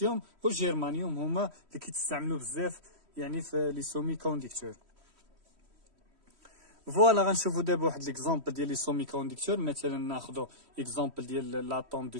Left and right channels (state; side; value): late; left; 3.1 ms